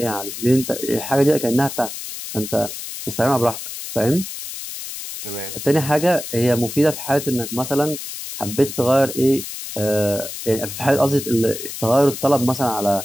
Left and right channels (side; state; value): left; noise; hiss, 9 dB below the sound